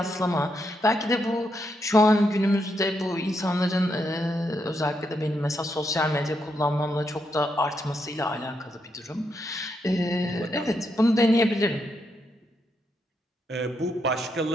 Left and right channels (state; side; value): normal; both; correlation 0.80